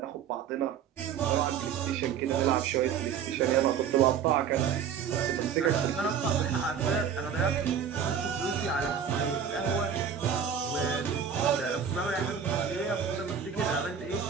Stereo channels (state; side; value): quieter; left; 7.6 dB